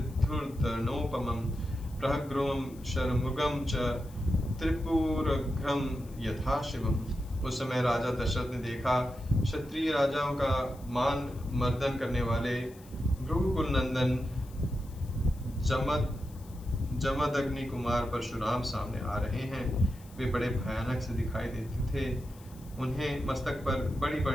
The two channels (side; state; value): left; noise; hiss, 24 dB below the sound